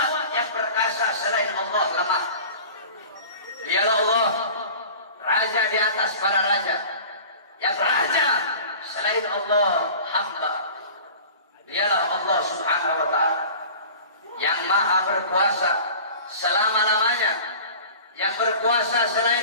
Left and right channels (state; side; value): inverted; both; correlation -0.41